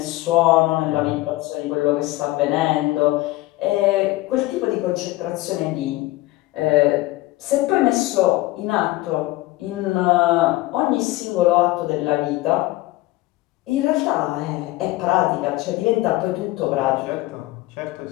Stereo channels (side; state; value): right; quieter; 18.6 dB